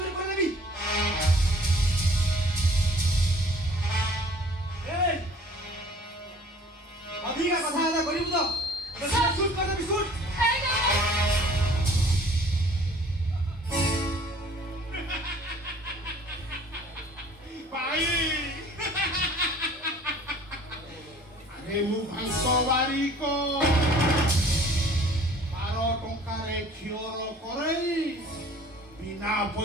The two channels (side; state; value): both; normal; correlation 0.52